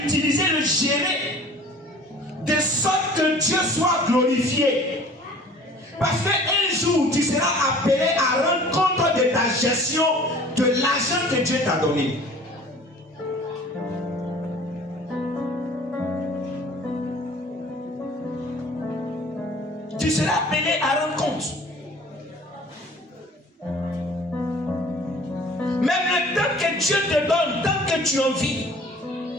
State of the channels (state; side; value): normal; both; correlation 0.48